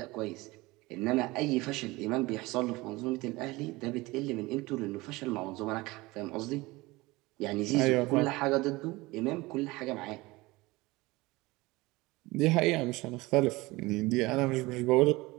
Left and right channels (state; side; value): quieter; left; 21.5 dB